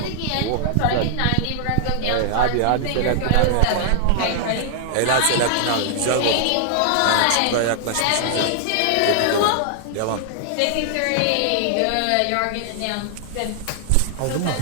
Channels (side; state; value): both; different; correlation 0.00